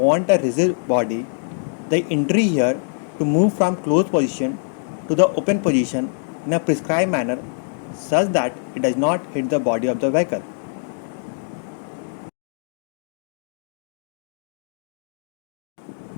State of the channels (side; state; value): right; silent; digital silence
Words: a rigid body, the entry here, to move from closed position to the open position in a prescribed manner such that it does not hit the body of the vehicle.